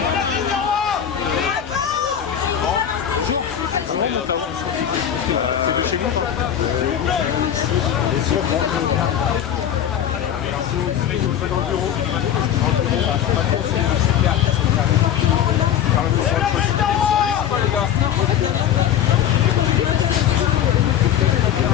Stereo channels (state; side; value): quieter; right; 9.8 dB